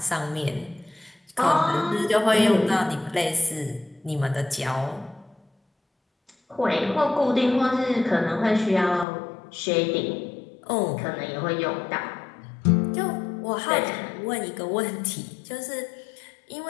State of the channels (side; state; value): right; drops out; at 9.1 s